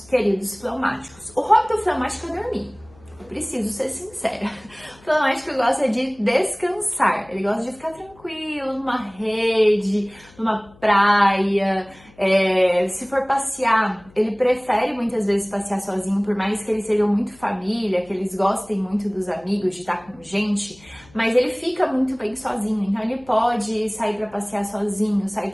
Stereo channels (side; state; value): left; noise; hum, 26 dB below the sound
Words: queridos fleumáticos. O hobby do fleumático é dormir. Eu preciso ser sincera. O fleumático gosta de descansar. Ele gosta de ficar tranquilo, numa rede, numa praia. Se for passear, ele prefere muitas vezes passear sozinho, por mais que eles sejam muito família, que eles gostem muito dos amigos, de estar com gente, mas ele fica muito bem sozinho, então ele pode sair para passear sozinho, sair